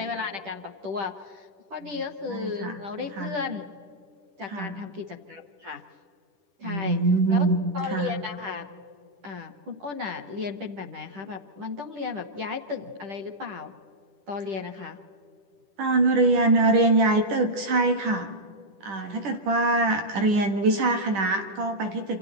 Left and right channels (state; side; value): late; left; 10 ms